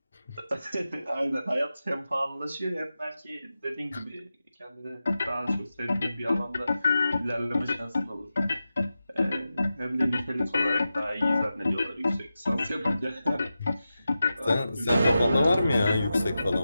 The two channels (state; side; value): inverted; both; correlation -0.92